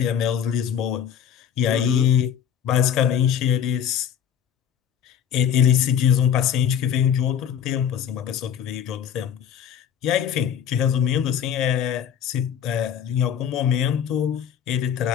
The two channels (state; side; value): quieter; right; 8.8 dB